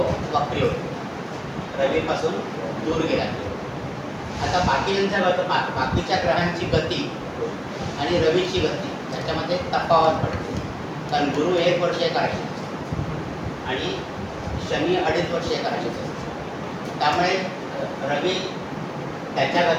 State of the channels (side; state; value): both; identical; correlation 1.00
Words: वक्री होतो, रवीपासून दूर गेला. आता बाकीच्या ग्रहांची गती आणि रवीची गती त्याच्यामध्ये तफावत पडते. कारण गुरु 1 वर्ष एका राशीत आणि शनी 2.5 वर्ष एका राशीत असतो. त्यामुळे रवी त्याच्या